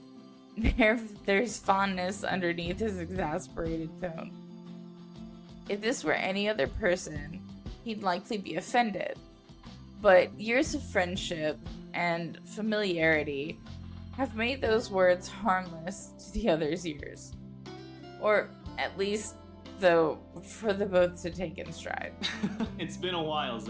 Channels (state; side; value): identical; both; correlation 1.00